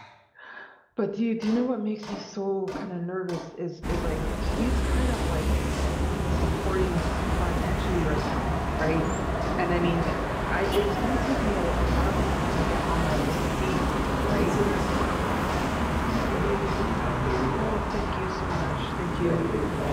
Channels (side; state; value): both; identical; correlation 1.00